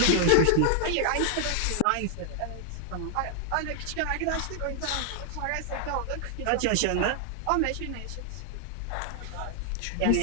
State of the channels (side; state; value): both; different; correlation 0.00